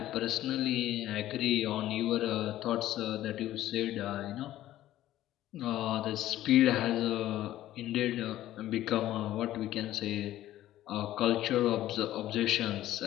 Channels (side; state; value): right; quieter; 13.9 dB